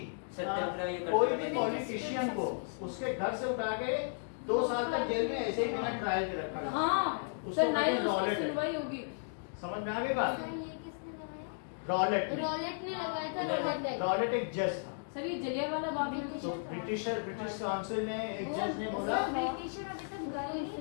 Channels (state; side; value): silent; right; digital silence